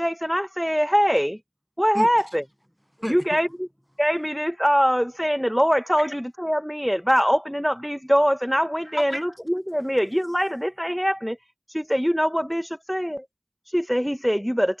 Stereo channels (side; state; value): both; identical; correlation 1.00